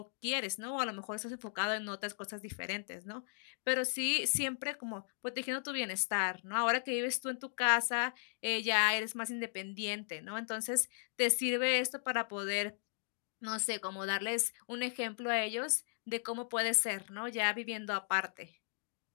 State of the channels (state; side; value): silent; right; digital silence